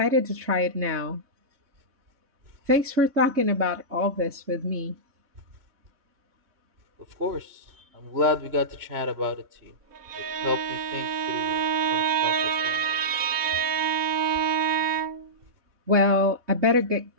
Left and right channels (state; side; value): late; left; 3.6 ms